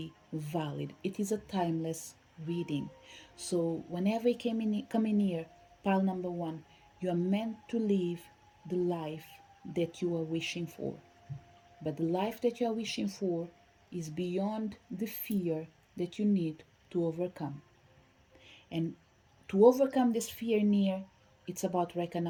valid. It is a timeless reading. So whenever you come in here, pile number one, you are meant to live the life that you are wishing for. But the life that you are wishing for is beyond the fear that you need to overcome. And to overcome this fear near, it's about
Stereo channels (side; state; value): both; identical; correlation 1.00